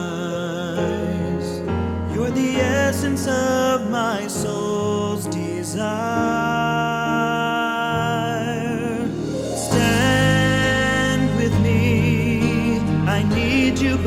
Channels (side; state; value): both; identical; correlation 1.00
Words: You're the essence of my soul's desire. Stand with me, I need you